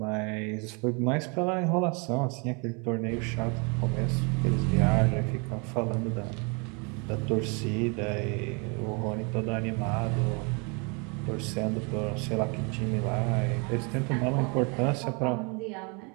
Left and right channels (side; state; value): left; quieter; 33.0 dB